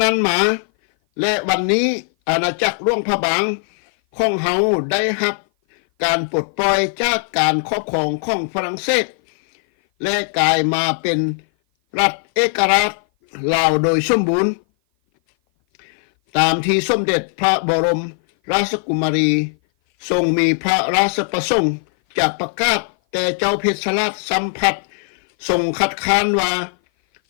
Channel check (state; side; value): silent; right; 56 dB below the other